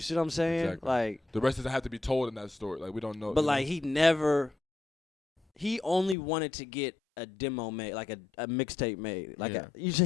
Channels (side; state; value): right; drops out; at 6.2 s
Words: see what I'm saying? Exactly. Like the rest doesn't have to be told in that story. Like we don't know. But like he only wanted to get a demo made, like a mixtape made. Like